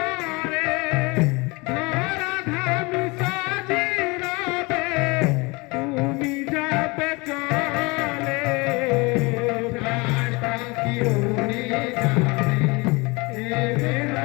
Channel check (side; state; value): right; quieter; 26.2 dB